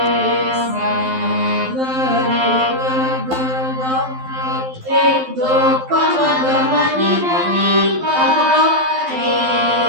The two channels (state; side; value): late; left; 12 ms